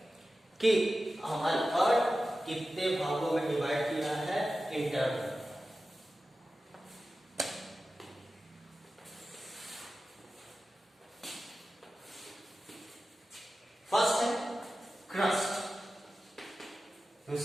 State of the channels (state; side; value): normal; both; correlation 0.94